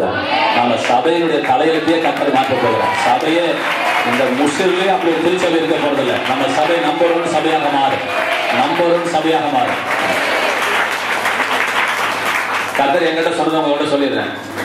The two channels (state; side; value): identical; both; correlation 1.00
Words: நம்ம சபையினுடைய தலையெழுத்தையே கர்த்தர் மாற்ற போகிறார். சபையே இந்த முஸ்லிம்லயே அப்படி ஒரு திருச்சபை இருக்க போறதில்லை. நம்ம சபை நம்பர் 1 சபையாக மாறும், நம்பர் 1 சபையாக மாறும். கர்த்தர் என்கிட்ட சொன்னதை உங்கள்கிட்ட சொல்லிடுறேன்.